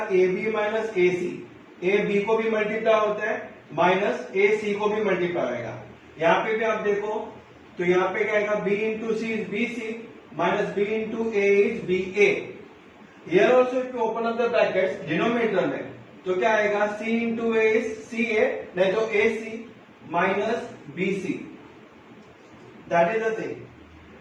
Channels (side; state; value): both; identical; correlation 1.00